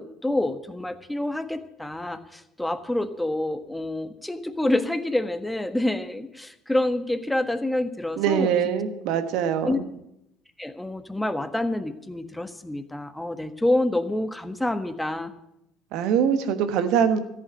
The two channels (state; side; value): normal; both; correlation 0.71